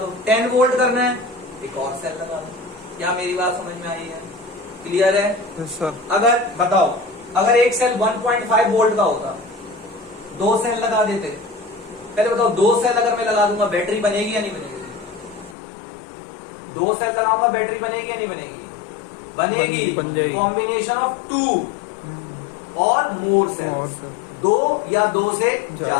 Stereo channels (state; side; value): drops out; right; at 15.6 s